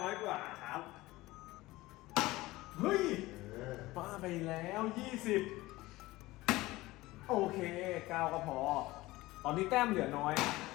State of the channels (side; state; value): right; quieter; 19.1 dB